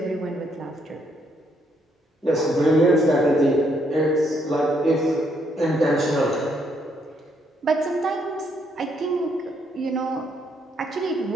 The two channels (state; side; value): normal; both; correlation 0.73